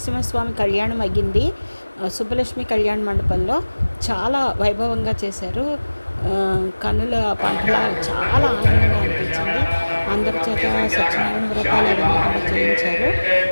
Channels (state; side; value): inverted; both; correlation -1.00